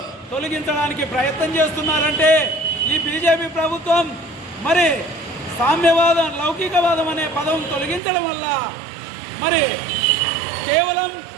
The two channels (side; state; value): left; drops out; at 8.0 s